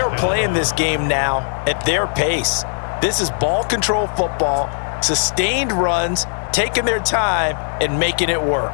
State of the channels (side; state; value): right; silent; 67 dB below the other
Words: playing this game now at their pace. This is ball control football, sustained runs, taking their time, and making it work.